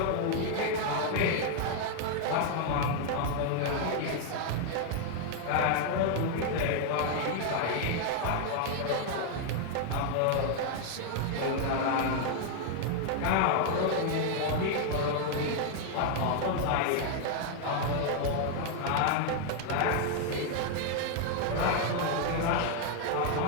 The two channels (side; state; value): both; different; correlation 0.00